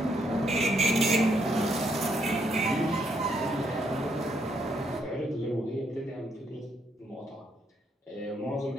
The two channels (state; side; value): normal; both; correlation 0.74